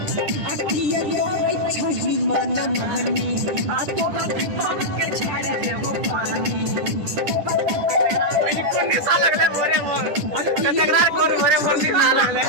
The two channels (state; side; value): late; left; 10 ms